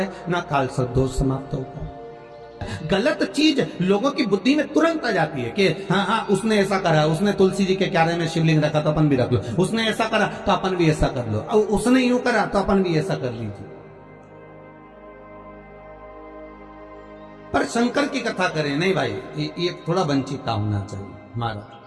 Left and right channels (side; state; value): both; identical; correlation 1.00